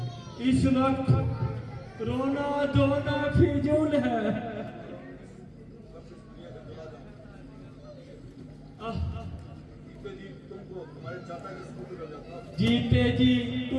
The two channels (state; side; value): identical; both; correlation 1.00